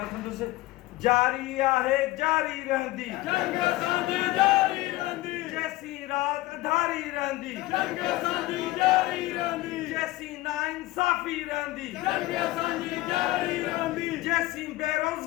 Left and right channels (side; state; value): right; quieter; 18.0 dB